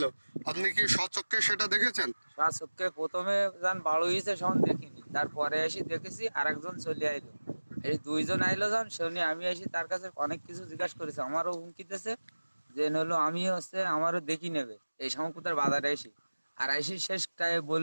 আপনি কি স্বচক্ষে সেটা দেখেছেন? স্বচক্ষে প্রথমে যান বাড়ু হয়েছে সখন দেখিনি, তারপরে এসে দেখেছি আর একজন চলে আইলো। এই দুইজন আইলো যান শুনি, আমি এসে তার কাছে অনেক কিছু জিজ্ঞাসা করেছি, আমারও হুমকিতেছে যে হলো আমি আমারও দেখি নেবে এই শঙ্কুতার বাজারে এসে। আর এসে শেষটায়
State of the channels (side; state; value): both; inverted; correlation -1.00